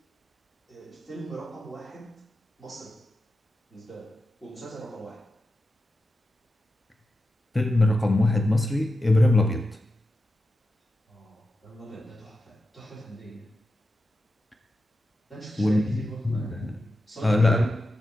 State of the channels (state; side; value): normal; both; correlation 0.90